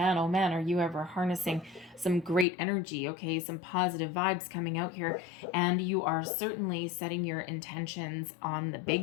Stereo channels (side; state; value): right; drops out; at 2.5 s